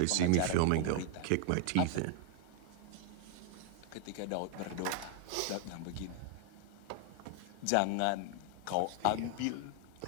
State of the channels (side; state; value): both; different; correlation 0.00